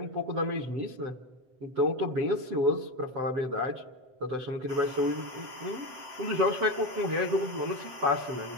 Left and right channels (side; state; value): left; late; 7.9 ms